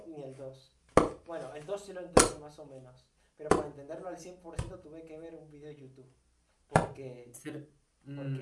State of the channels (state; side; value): identical; both; correlation 1.00